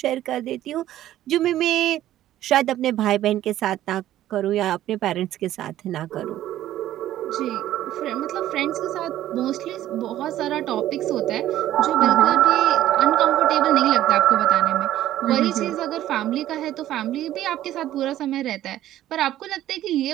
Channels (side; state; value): left; quieter; 13.2 dB